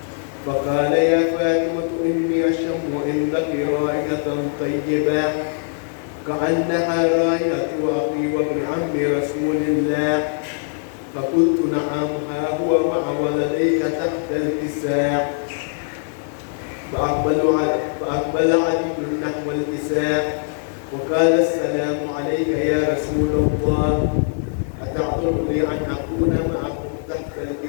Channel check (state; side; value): silent; right; 65 dB below the other